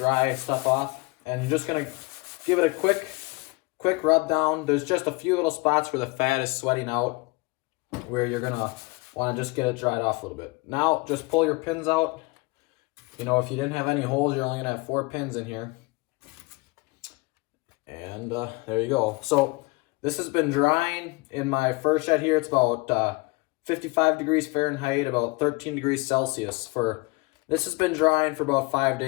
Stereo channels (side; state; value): right; quieter; 25.9 dB